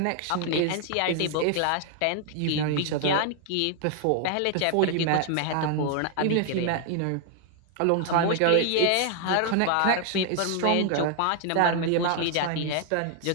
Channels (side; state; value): both; different; correlation 0.00